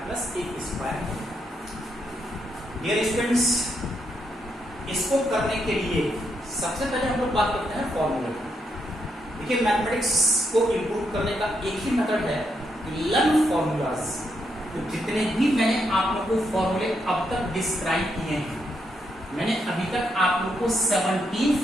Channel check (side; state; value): both; normal; correlation 0.79